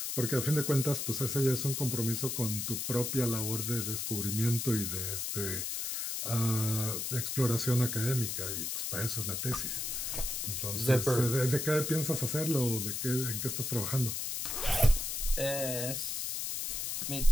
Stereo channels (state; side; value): noise; left; hiss, 2 dB below the sound